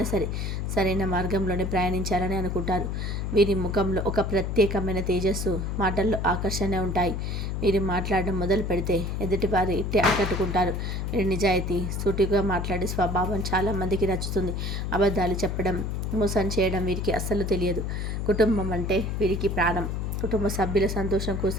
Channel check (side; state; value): left; noise; hum, 2 dB below the sound